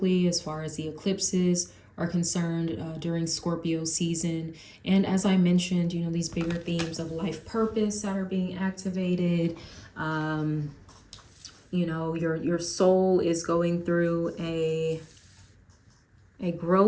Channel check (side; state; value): both; identical; correlation 1.00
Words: as far as the eclipses are concerned during Scorpio season. And as I mentioned, you know, these bigger themes of life purpose that are being activated. You know, your soul is going through a